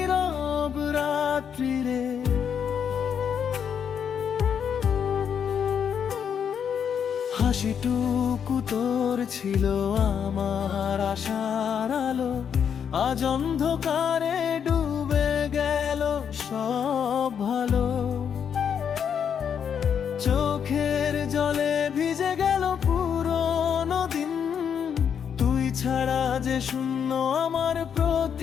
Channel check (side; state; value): right; quieter; 7.7 dB